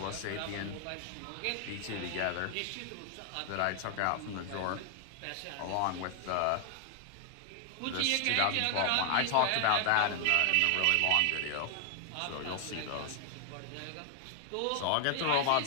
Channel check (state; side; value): different; both; correlation 0.00